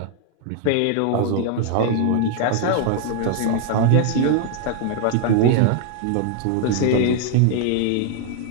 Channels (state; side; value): different; both; correlation 0.00